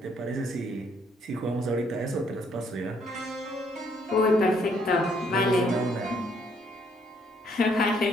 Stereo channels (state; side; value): normal; both; correlation 0.68